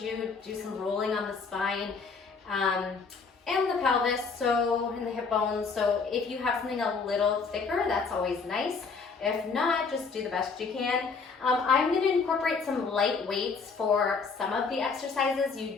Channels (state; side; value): quieter; right; 4.9 dB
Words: some rolling on the spine and the pelvis, and the hip bones. So if you have something a little thicker, that's always nice. If not, just do the best you can. I'm going to incorporate some light weights for some of the exercises. You